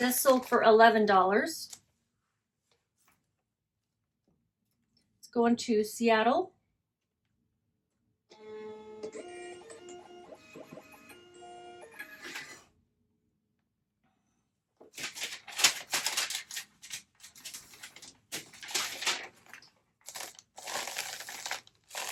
sold for $11. It's going to Seattle.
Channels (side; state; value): both; identical; correlation 1.00